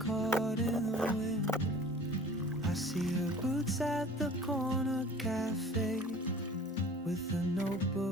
in the wind. I see her boots at the corner cafe, with a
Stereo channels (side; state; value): both; normal; correlation 0.45